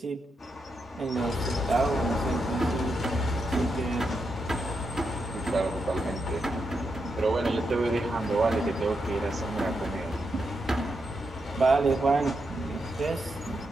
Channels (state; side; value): normal; both; correlation 0.84